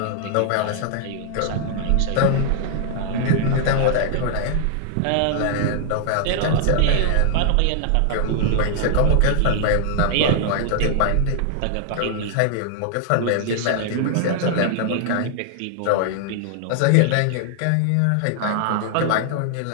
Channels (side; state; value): both; different; correlation -0.01